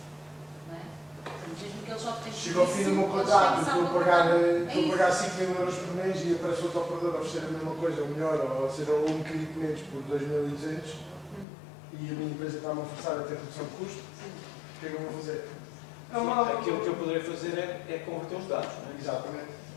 Não é? Portanto, mesmo que eles optem por Chega ao fim do meu eles contrato, têm que estou a salvar pagar, o contrato. estou a pagar 5 mil euros por mês e aparece outro operador a oferecer a mesma coisa, ou melhor, ou seja, um bocadinho menos por 2.200 e a minha empresa está-me a forçar a ter redução de custo. O que é que eu vou fazer? Aquilo que eu poderei fazer é converter os dados. Não é? Exatamente.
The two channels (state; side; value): drops out; right; at 11.5 s